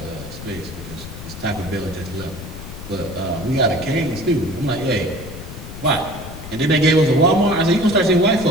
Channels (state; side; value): noise; left; rumble, 12 dB below the sound